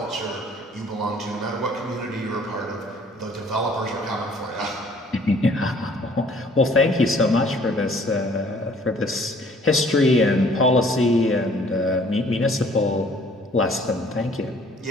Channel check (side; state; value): both; normal; correlation 0.57